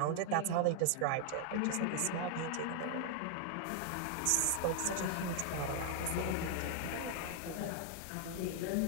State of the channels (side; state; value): both; different; correlation 0.00